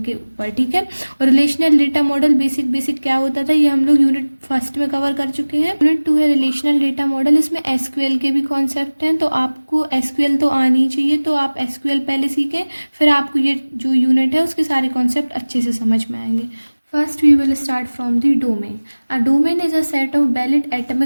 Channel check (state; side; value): inverted; both; correlation -1.00